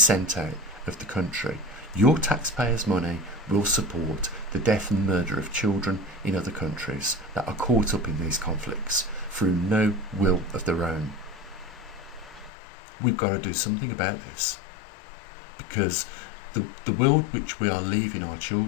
out of the country. Your taxpayers' money will support the death and murder of children in other countries that are caught up in these conflicts through no will of their own. We've got to do something about this, because the world which we are leaving our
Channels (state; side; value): drops out; right; at 12.5 s